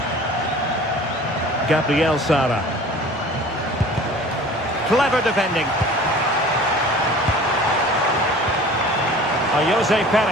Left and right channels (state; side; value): normal; both; correlation 0.44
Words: Gabriel Sara. Clever defending. Jose